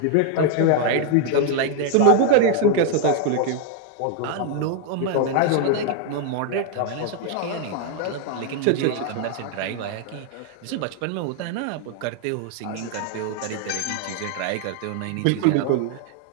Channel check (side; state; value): both; different; correlation 0.00